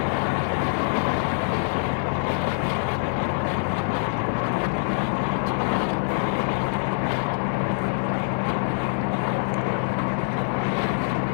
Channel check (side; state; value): right; silent; digital silence